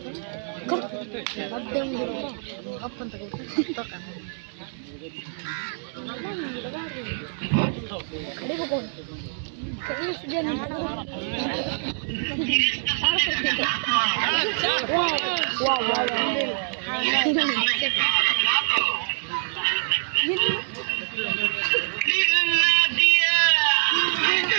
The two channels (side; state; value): left; silent; digital silence